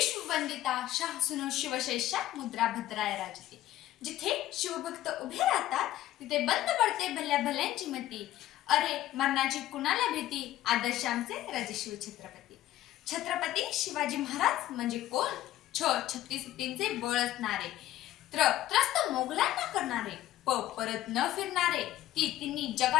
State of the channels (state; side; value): quieter; right; 14.2 dB